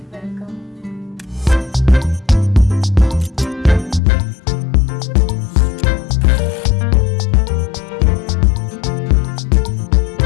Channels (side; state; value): right; drops out; at 4.0 s